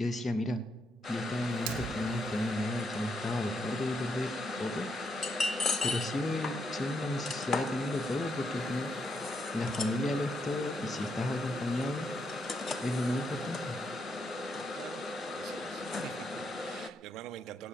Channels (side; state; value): both; normal; correlation 0.79